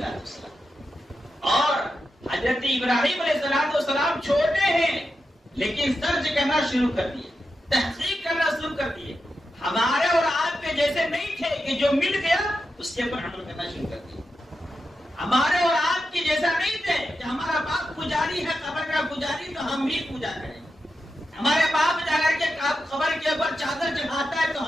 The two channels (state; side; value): normal; both; correlation 0.89